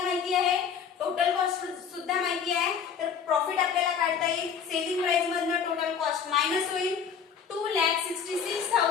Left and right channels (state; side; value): quieter; right; 7.0 dB